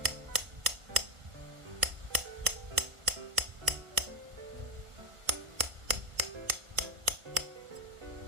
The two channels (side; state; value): left; late; 1.4 ms